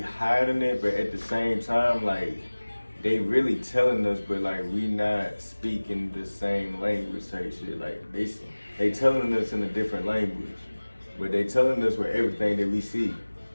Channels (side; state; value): both; inverted; correlation -1.00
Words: it, but at the same time, like they really telling us, but like we not speaking the same language type shit. Like they telling us in a different language, but they telling us with everything that we see.